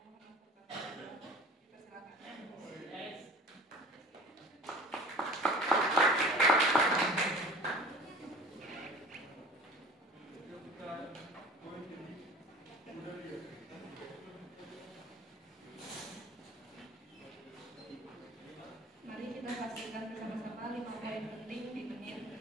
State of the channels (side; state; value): both; normal; correlation 0.43